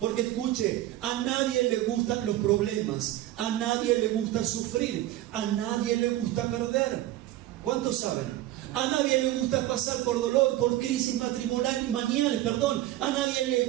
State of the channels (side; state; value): left; quieter; 14.8 dB